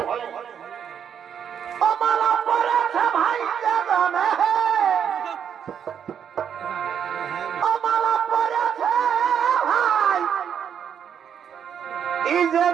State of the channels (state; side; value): quieter; left; 8.2 dB